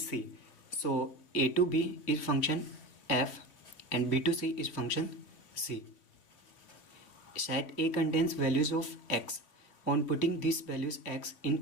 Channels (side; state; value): right; late; 3.0 ms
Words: So a to b is function f and b to c is function c. Set a contains values of x. On putting these values x